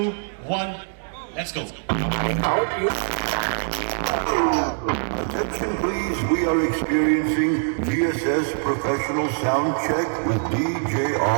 let's go. Attention please, we are experiencing GSS professional sound check with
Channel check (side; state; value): left; silent; digital silence